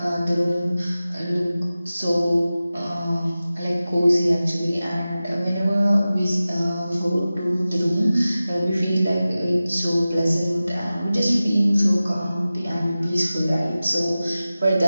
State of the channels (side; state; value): both; inverted; correlation -0.96